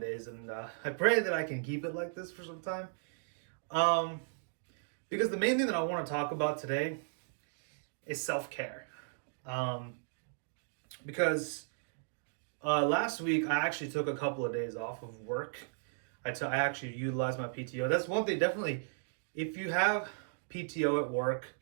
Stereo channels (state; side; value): silent; left; digital silence